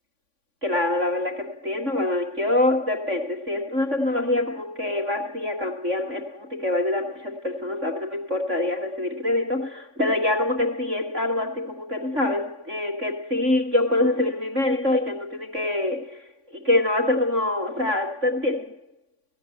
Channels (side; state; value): left; late; 3.5 ms